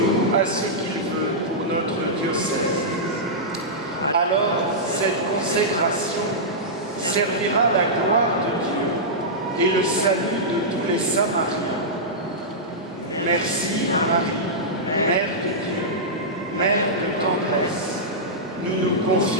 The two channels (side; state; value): both; normal; correlation -0.12